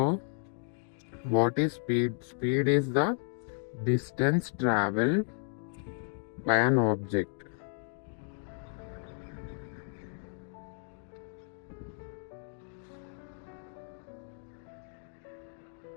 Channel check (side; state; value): right; silent; 56 dB below the other